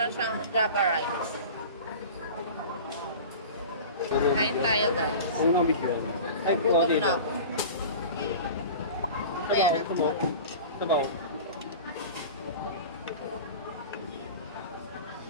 siyang Java rice. Kain tayo, guys. Gutom na ako. Ayan na. Sabaw.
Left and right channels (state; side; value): inverted; both; correlation -0.35